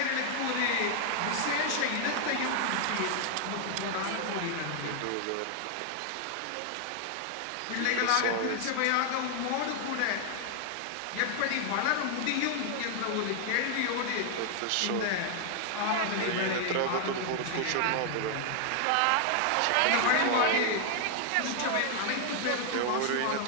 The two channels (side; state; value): both; different; correlation 0.00